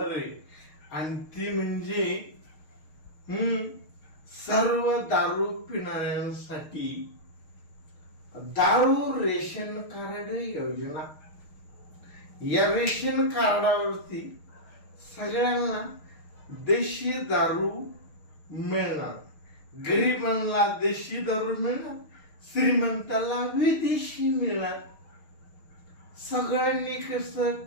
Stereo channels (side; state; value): right; late; 6.5 ms